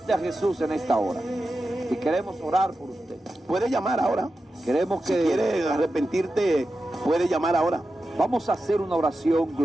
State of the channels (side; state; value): both; normal; correlation 0.91